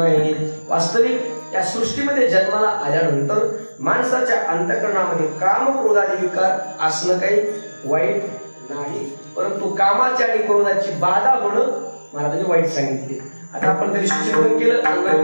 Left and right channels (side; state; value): both; inverted; correlation -1.00